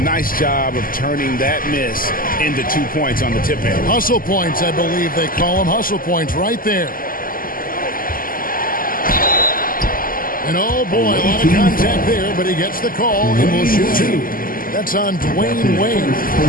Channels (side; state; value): right; late; 0.41 ms